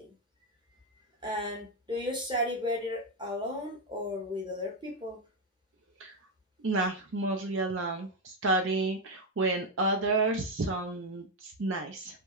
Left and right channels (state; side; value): normal; both; correlation 0.06